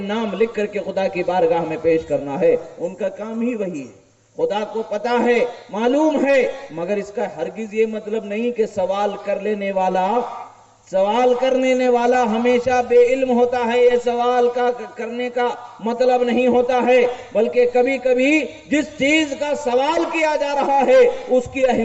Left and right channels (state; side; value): identical; both; correlation 1.00